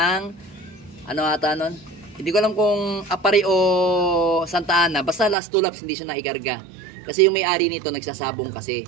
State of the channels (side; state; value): left; drops out; at 5.4 s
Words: hindi ko alam kung Apari o Santa Ana. Basta last 2 laps hindi siya naikarga. Kasi yung may-ari nito nagsasabong kasi.